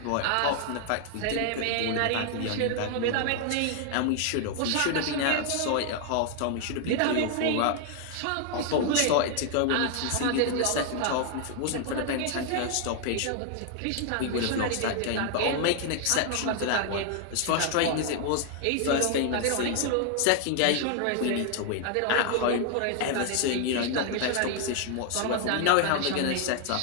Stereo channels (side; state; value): both; different; correlation 0.00